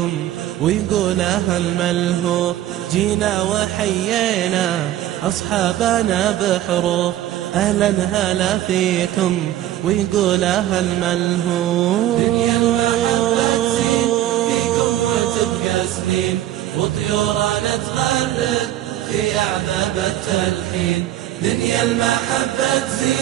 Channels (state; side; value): quieter; left; 13.1 dB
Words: ويقول أهل ملهوف. جينا وحيينا أصحابنا بحروف، أهلا هلا فيكم ويقول أهل ملهوف. دنيا المحبة تزين فيكم وتبقى سنين، وطيورنا تغرد في أعذاب التلحين. دنيا المحبة